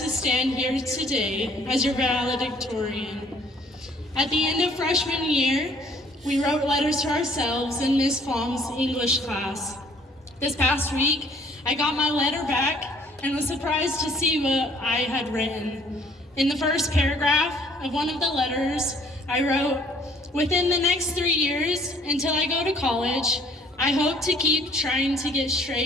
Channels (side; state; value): both; normal; correlation 0.59